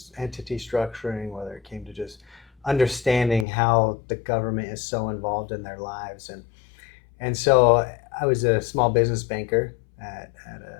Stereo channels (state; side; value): drops out; right; at 3.5 s